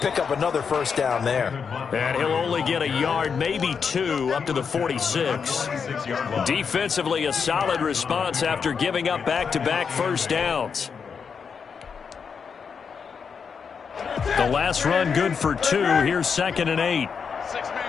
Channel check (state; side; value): quieter; right; 6.2 dB